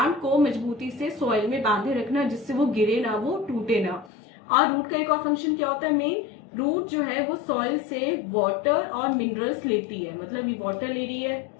को मजबूती से सॉइल में बांधे रखना, जिससे वो गिरे ना, वो टूटे ना। और रूट का एक और फंक्शन क्या होता है मेन? रूट जो है वो सॉइल से वाटर और मिनरल्स लेती है, मतलब ये वाटर ले रही है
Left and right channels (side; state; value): right; drops out; at 4.1 s